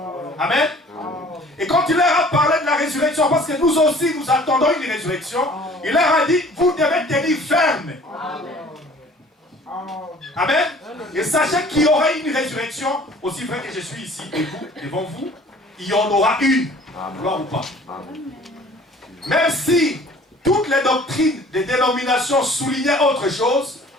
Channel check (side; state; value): both; normal; correlation 0.51